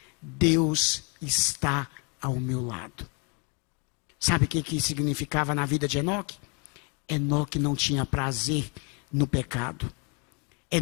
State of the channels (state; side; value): quieter; right; 34.9 dB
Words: Deus está ao meu lado. Sabe o que significava na vida de Enoque? Enoque não tinha prazer no pecado.